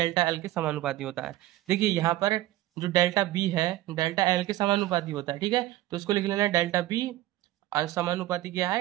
एल के समानुपाती होता है। देखिए यहाँ पर जो डेल्टा बी है डेल्टा एल के समानुपाती होता है। ठीक है, तो इसको लिख लेना है डेल्टा बी समानुपाती क्या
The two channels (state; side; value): quieter; left; 15.5 dB